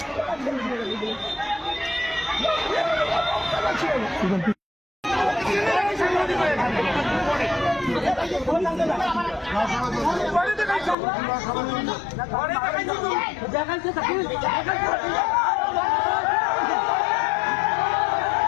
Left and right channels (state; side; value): drops out; right; at 11.0 s